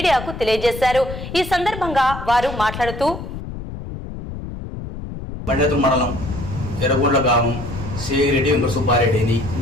తెలియజేశారు. ఈ సందర్భంగా వారు మాట్లాడుతూ బండేతు మండలం ఎర్రగొండ్ల గ్రామం శ్రీరెడ్డి వెంకట సుబ్బారెడ్డిని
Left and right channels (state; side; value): noise; left; rumble, 9 dB below the sound